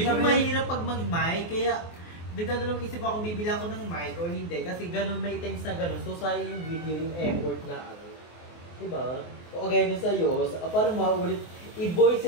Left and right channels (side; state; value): right; late; 24 ms